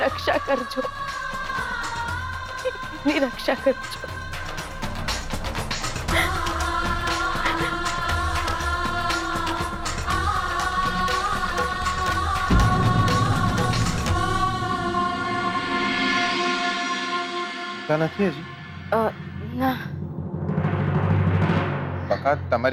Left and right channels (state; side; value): identical; both; correlation 1.00